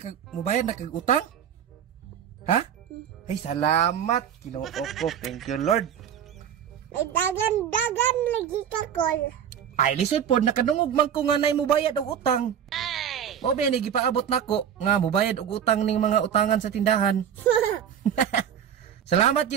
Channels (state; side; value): quieter; left; 8.9 dB